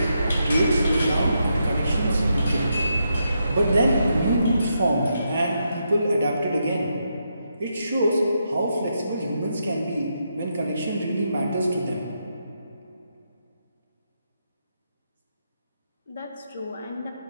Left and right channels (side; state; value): both; inverted; correlation -0.82